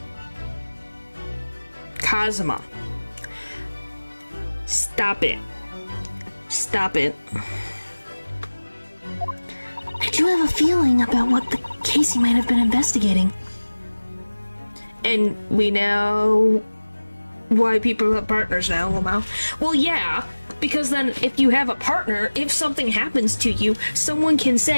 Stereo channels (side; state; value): both; inverted; correlation -1.00